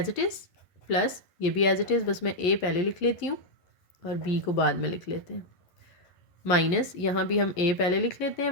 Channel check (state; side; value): late; right; 11 ms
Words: it is, plus ये भी एज इट इज़, बस मैं a पहले लिख लेती हूँ और b को बाद में लिख लेते हैं, माइनस यहाँ भी हम a पहले लिख लेते हैं